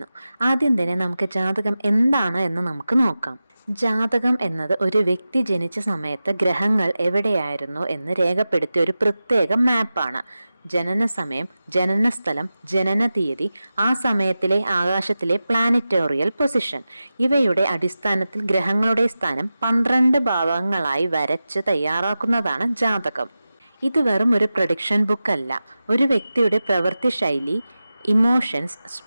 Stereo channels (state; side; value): inverted; both; correlation -0.94